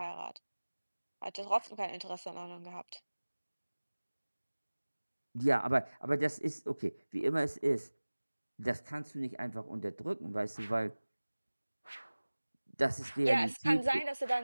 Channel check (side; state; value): both; inverted; correlation -1.00